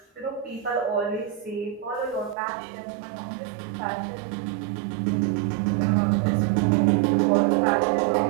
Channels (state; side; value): drops out; left; at 2.4 s